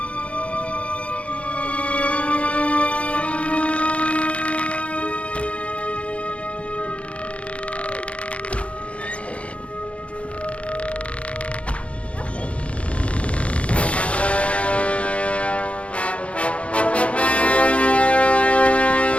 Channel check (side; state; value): right; late; 0.062 ms